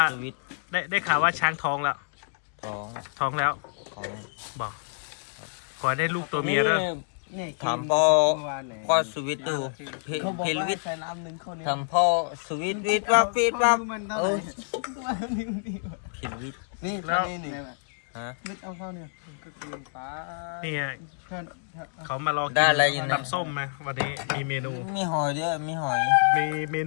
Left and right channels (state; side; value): silent; right; digital silence